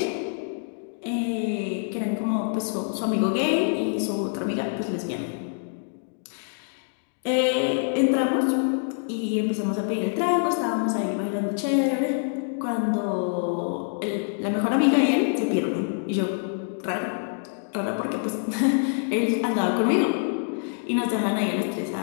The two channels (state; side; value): silent; right; digital silence